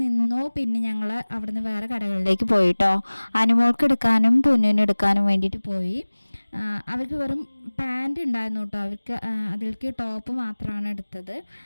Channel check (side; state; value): both; inverted; correlation -1.00